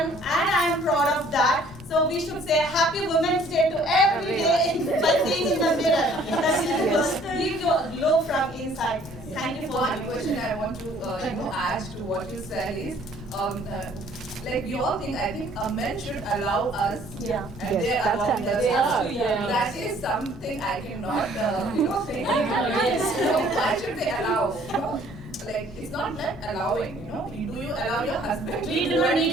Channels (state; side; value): normal; both; correlation 0.58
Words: I am proud of that. So we should say Happy Women's Day to every day by seeing in the mirror. Leave your glow from inside. Thank you for one having me. question I want to add to what you said is, we all think, I think men should allow us, Yeah. and Yes, they that's allow us. understandable. Yeah. That is something I cannot, think. Why should they allow? It's not that allowing. Do you allow your husband? We do not need